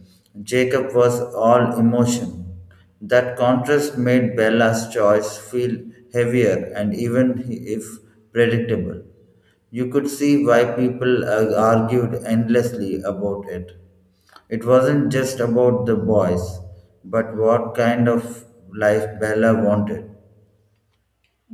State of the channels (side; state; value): both; identical; correlation 1.00